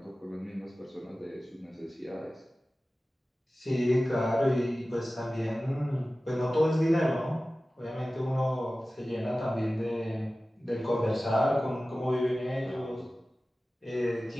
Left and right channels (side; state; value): both; normal; correlation 0.96